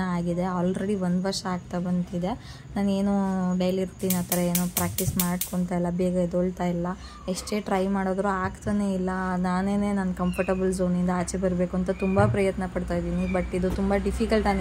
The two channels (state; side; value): identical; both; correlation 1.00